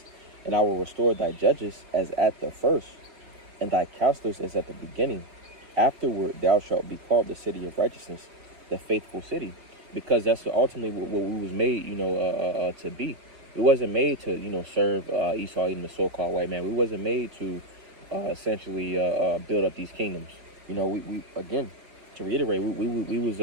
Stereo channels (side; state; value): left; late; 5.5 ms